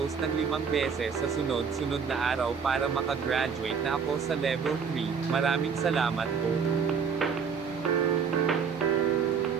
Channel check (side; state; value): left; quieter; 6.3 dB